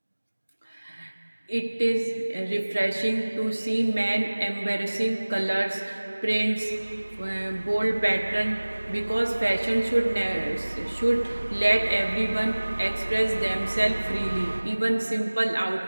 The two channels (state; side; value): inverted; both; correlation -1.00